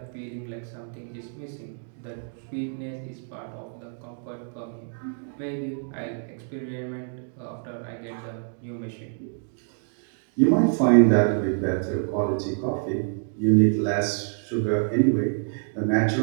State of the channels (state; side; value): silent; left; 60 dB below the other